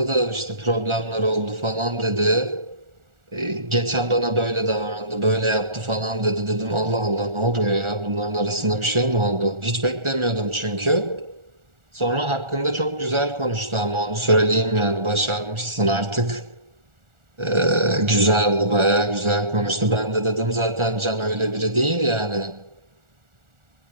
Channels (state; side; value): late; left; 1.4 ms